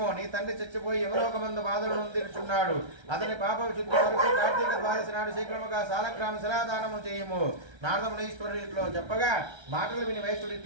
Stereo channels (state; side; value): late; left; 1.3 ms